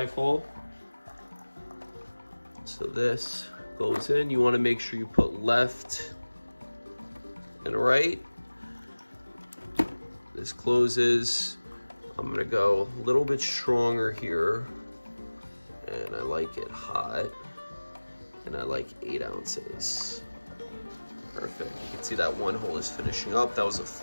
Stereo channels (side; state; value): both; inverted; correlation -1.00